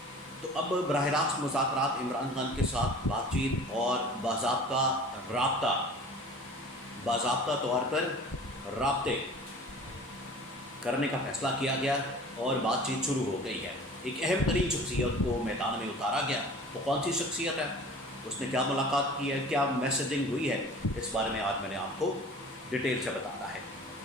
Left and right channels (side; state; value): both; normal; correlation 0.43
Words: तो अब बराह रास्त मुज़ाकरात, इमरान खान के साथ बातचीत और बाज़ाब्ता तौर पर राब्ते करने का फ़ैसला किया गया और बातचीत शुरू हो गई है। एक अहम तरीन शख्सियत को मैदान में उतारा गया। तो कौन सी शख्सियत है, उसने क्या मुलाकात की है, क्या मैसेजिंग हुई है, इस बारे में आज मैंने आपको डिटेल से बताना है।